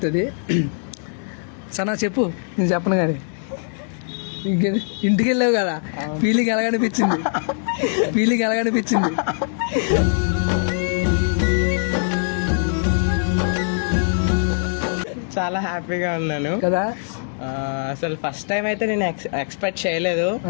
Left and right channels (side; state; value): right; silent; 64 dB below the other